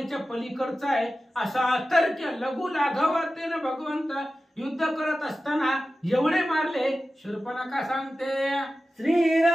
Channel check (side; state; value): both; normal; correlation 0.94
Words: पलीकडचं आहे. असा अतर्क्य लघु लाघवातेनं भगवंत युद्ध करत असताना एवढे मारले. शूर्पणखा सांगते,